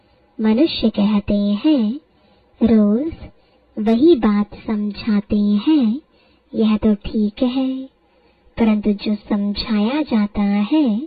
मनुष्य कहते हैं रोज वही बात समझाते हैं, यह तो ठीक है, परंतु जो समझाया जाता है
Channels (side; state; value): both; identical; correlation 1.00